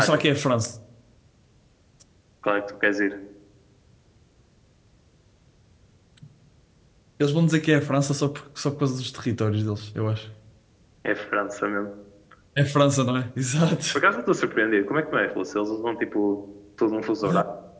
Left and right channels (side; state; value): both; identical; correlation 1.00